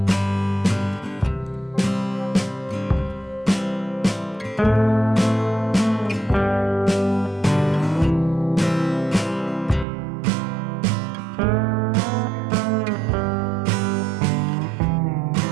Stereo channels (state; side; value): drops out; left; at 9.9 s